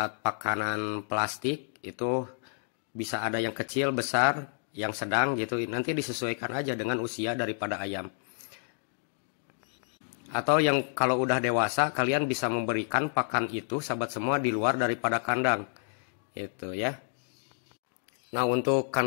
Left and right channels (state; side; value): silent; right; digital silence